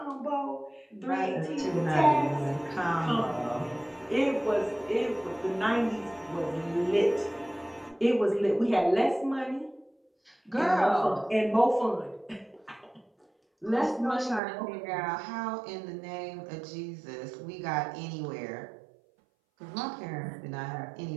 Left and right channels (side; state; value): left; drops out; at 14.4 s